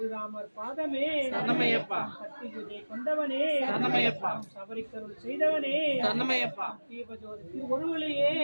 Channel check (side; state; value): both; inverted; correlation -1.00